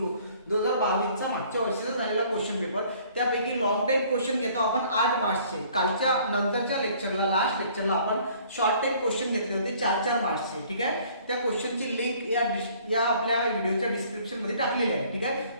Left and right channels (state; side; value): inverted; both; correlation -0.57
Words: 2022 चा मागच्या वर्षीचा झालेला क्वेश्चन पेपर. त्यापैकी लॉंग टाइप क्वेश्चन घेतो आपण 8 मार्क्सचे. कालच्या नंतरच्या लेक्चरला, लास्ट लेक्चरला आपण शॉर्ट टाइप क्वेश्चन घेतले होते 4-4 मार्क्सचे. ठीक आहे. त्या क्वेश्चनची लिंक या आपल्या व्हिडिओच्या डिस्क्रिप्शन मध्ये टाकलेली आहे. ठीक आहे.